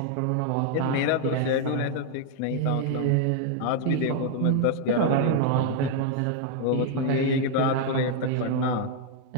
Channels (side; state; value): both; different; correlation 0.00